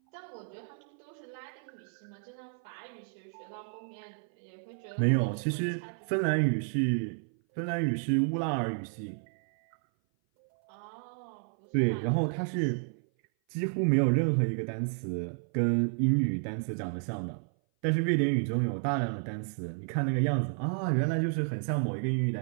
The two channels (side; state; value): left; silent; 57 dB below the other